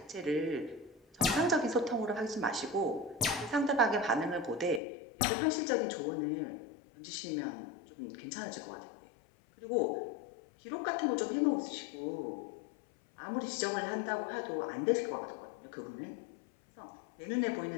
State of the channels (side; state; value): right; drops out; at 4.8 s